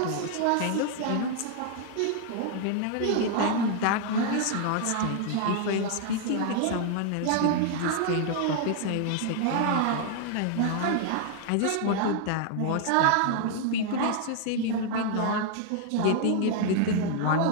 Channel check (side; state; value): both; different; correlation 0.00